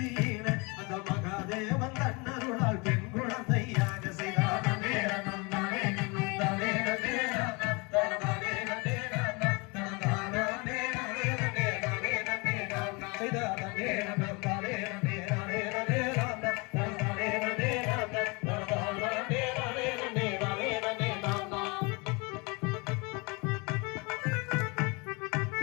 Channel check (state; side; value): quieter; right; 28.9 dB